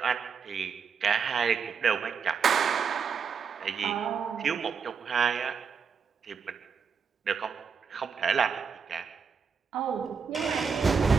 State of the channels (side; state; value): left; quieter; 6.1 dB